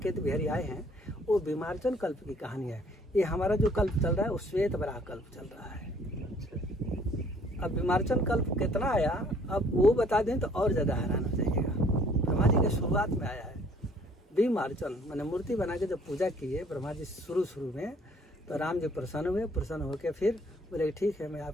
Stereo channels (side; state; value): both; normal; correlation 0.59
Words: बिहारी आए हैं वो बीमारचन कल्प की कहानी है। ये हमारा जो कल्प चल रहा है वो श्वेत वराह कल्प चल रहा है। अब बीमारचन कल्प कितना आया अब वो बता दें तो और ज्यादा हैरान हो जाइएगा। ब्रह्मा जी के शुरुआत में आया है बीमारचन, मैंने मूर्ति बना के जब पूजा की है ब्रह्मा जी शुरू में, तो राम जी प्रसन्न हुए, प्रसन्न होकर फिर बोले ठीक है मैं